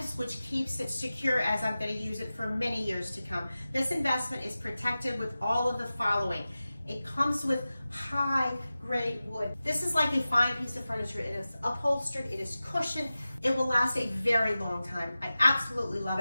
which keeps it secure as I'm going to use it for many years to come. This investment is protected with all of the following. It comes with high grade wood. This is like a fine piece of furniture. It is upholstered, it is cushioned. It will last a very long time. I absolutely love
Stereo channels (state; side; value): inverted; both; correlation -0.95